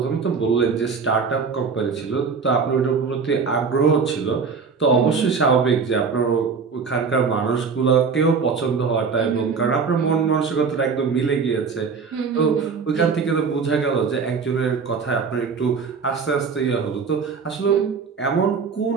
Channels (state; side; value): quieter; left; 5.4 dB